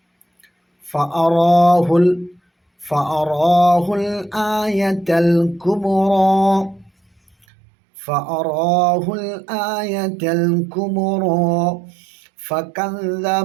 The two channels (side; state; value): left; drops out; at 7.5 s